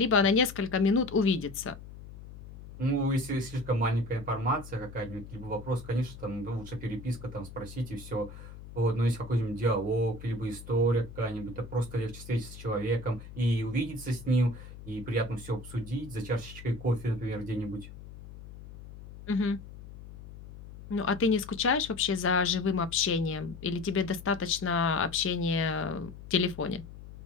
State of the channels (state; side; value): noise; left; hum, 15 dB below the sound